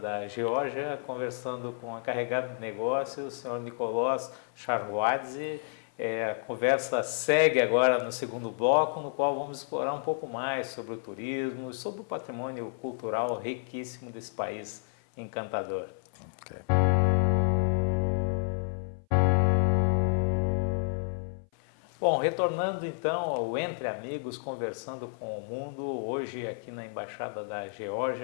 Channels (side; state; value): right; silent; 57 dB below the other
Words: Geórgia, conversando com a encarregada de negócios, o senhor Nicolás Charhuadze. A conversa segue agora no segundo bloco, no qual vamos explorar um pouco mais sobre o turismo, sobre o patrimônio cultural riquíssimo desse país encantador. Okay. Bom, retornando então ao Entre Amigos, conversando com o mundo, hoje aqui na Embaixada da